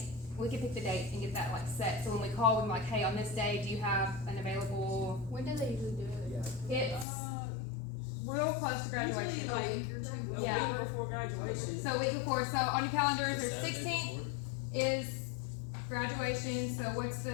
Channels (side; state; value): right; drops out; at 7.1 s